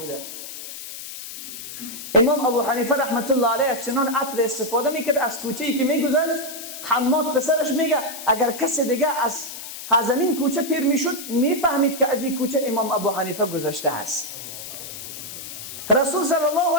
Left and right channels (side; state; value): left; noise; hiss, 10 dB below the sound